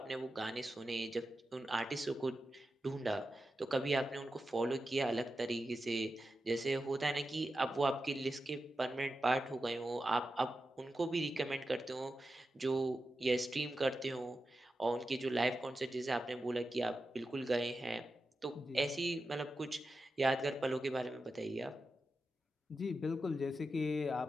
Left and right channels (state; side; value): normal; both; correlation 0.91